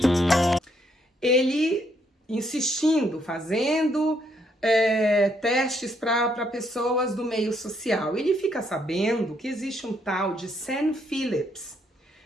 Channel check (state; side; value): normal; both; correlation 0.72